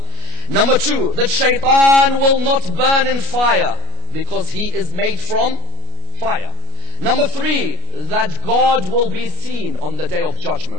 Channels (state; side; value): late; left; 33 ms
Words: Number two, that shaitan will not burn in fire because he is made from fire. Number three, that God will be seen on the day of